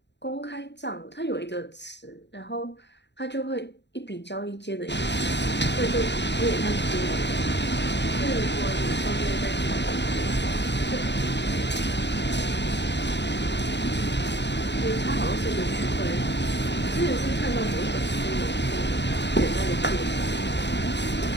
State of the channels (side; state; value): right; late; 0.51 ms